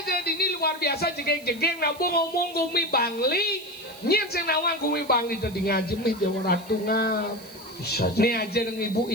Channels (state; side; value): noise; right; hiss, 21 dB below the sound